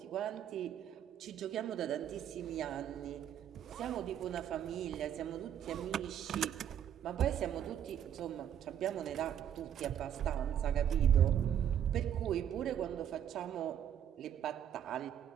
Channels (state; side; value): quieter; left; 9.7 dB